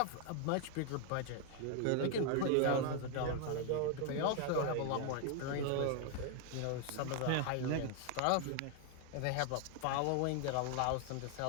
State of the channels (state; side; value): different; both; correlation 0.00